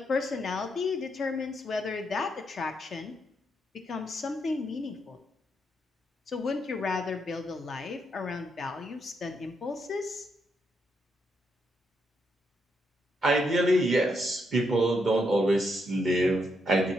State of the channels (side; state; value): both; normal; correlation 0.79